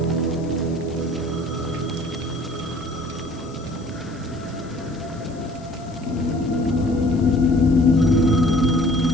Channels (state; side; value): noise; left; hiss, 25 dB below the sound